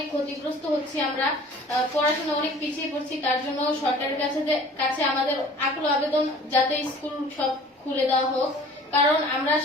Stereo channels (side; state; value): both; normal; correlation 0.47